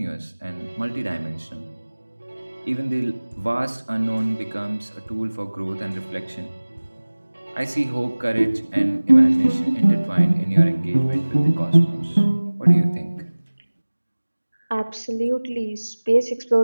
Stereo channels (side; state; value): both; inverted; correlation -1.00